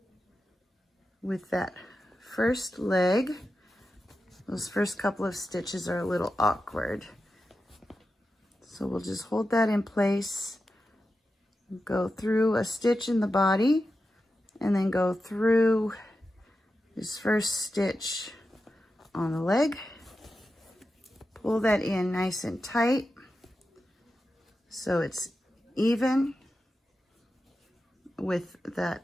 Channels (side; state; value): both; normal; correlation 0.91